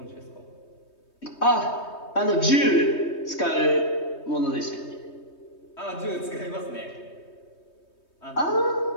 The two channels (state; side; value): late; right; 3.2 ms